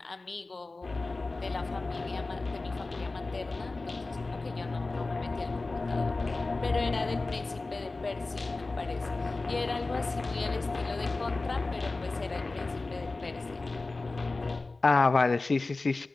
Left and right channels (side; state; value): right; quieter; 3.4 dB